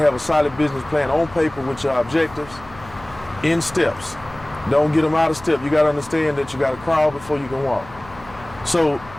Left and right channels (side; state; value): left; noise; hum, 20 dB below the sound